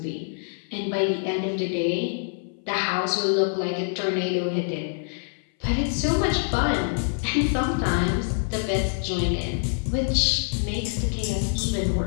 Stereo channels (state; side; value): silent; right; 58 dB below the other